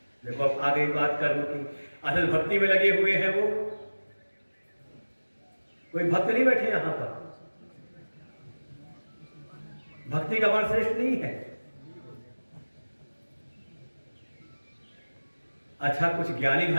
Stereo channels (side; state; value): both; inverted; correlation -1.00